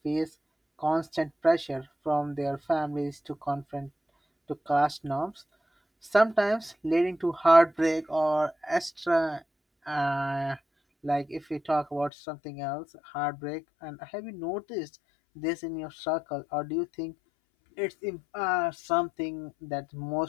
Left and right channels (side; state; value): right; drops out; at 12.1 s